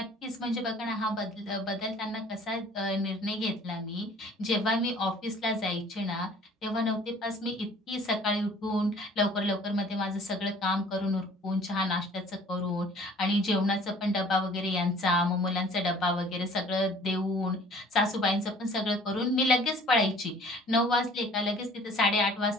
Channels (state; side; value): normal; both; correlation 0.52